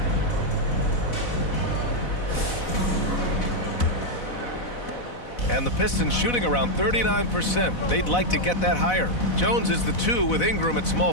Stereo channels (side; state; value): right; late; 4.0 ms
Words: And the Pistons shooting around 39%. They'd like to get that higher. Jones is the 2 with Ingram at